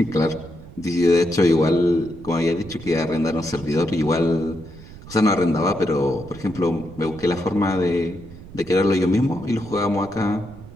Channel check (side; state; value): right; noise; rumble, 17 dB below the sound